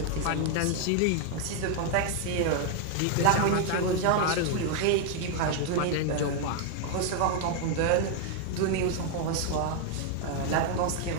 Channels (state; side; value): different; both; correlation 0.00